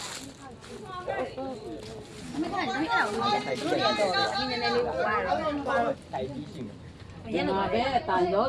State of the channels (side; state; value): both; identical; correlation 1.00